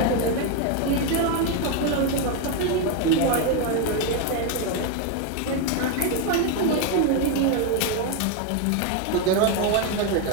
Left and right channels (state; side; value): different; both; correlation 0.01